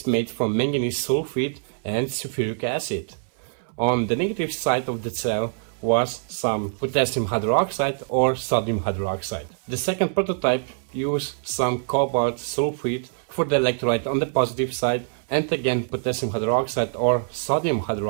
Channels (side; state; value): left; silent; 59 dB below the other